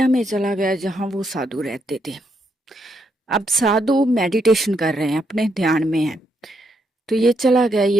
में चला गया जहां वो साधु रहते थे। अब साधु मेडिटेशन कर रहे हैं, अपने ध्यान में है। तो ये चला गया,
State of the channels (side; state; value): both; normal; correlation 0.78